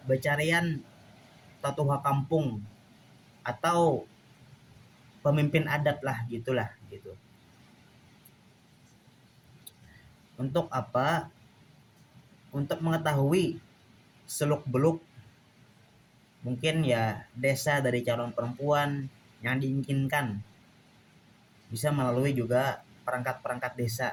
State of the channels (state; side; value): identical; both; correlation 1.00